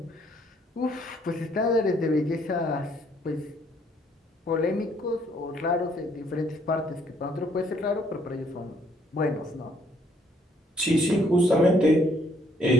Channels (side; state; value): both; normal; correlation 0.66